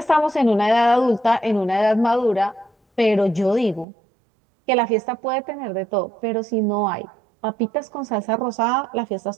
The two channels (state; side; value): drops out; left; at 3.9 s